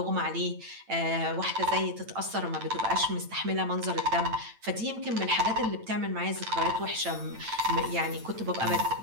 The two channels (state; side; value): late; left; 8.9 ms